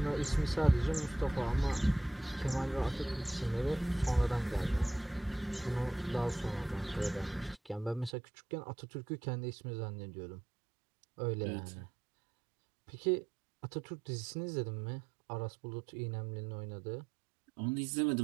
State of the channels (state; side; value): drops out; left; at 8.1 s